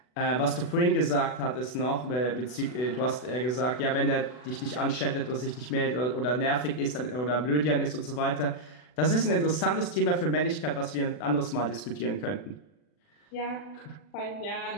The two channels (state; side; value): late; right; 40 ms